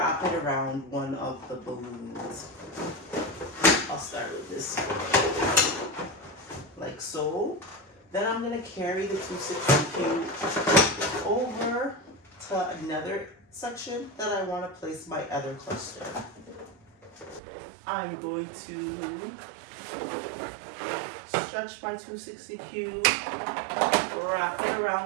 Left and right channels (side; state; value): left; drops out; at 17.4 s